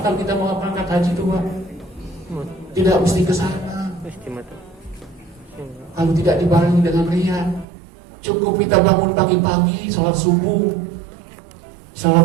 kalau kita mau berangkat haji itu Pak, tidak mesti ke sana. Kalau tidak dibarengi dengan riya, cukup kita bangun pagi-pagi, sholat subuh.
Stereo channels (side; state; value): left; drops out; at 7.7 s